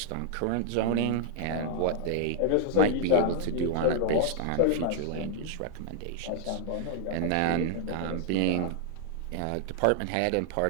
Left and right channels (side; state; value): both; different; correlation 0.00